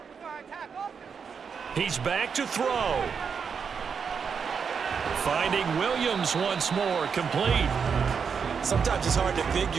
He's back to throw. Finding Williams once more, complete. Sometimes it's hard to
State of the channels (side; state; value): left; quieter; 6.3 dB